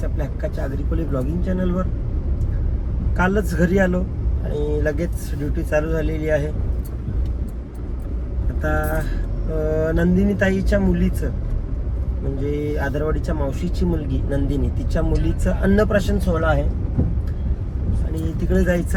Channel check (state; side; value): identical; both; correlation 1.00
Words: आपल्या हक्काच्या आग्रिकोली ब्लॉगिंग चॅनलवर. कालच घरी आलो आणि लगेच ड्युटी चालू झालेली आहे. आता नंदिनी ताईच्या मुलीचं म्हणजे आदरवाडीच्या मावशीची मुलगी नंदिनी, तिच्या मुलीचं अन्नप्राशन सोहळा आहे आणि तिकडे